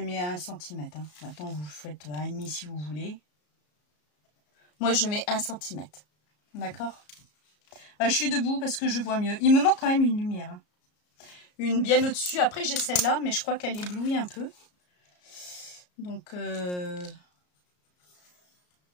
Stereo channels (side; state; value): right; late; 34 ms